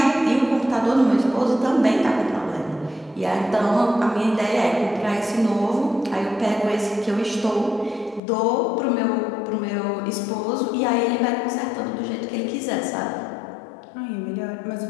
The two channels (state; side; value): drops out; right; at 8.2 s